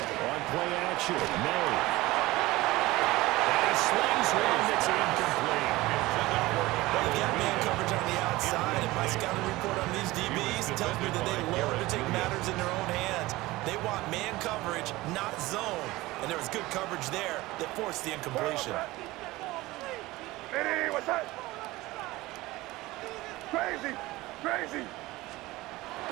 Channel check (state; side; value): quieter; left; 19.3 dB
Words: play action, May. And he slings one that's incomplete. Well, you got man coverage on the outside. outside, and my scouting report on these DBs tells me that they love to take matters in their own hands. They want man coverage, not zone. And there was good coverage there that forced the incompletion. Hey, what's that? Crazy, crazy.